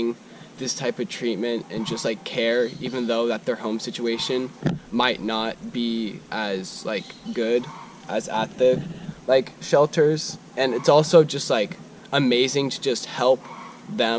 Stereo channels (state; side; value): identical; both; correlation 1.00